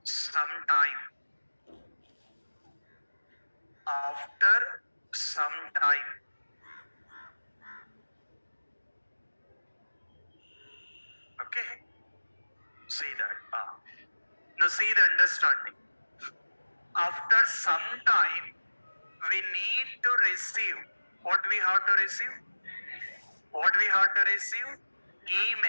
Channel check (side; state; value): both; inverted; correlation -1.00